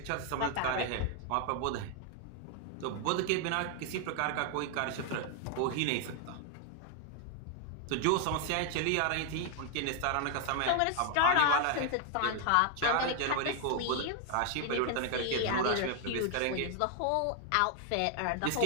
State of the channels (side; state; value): both; different; correlation 0.00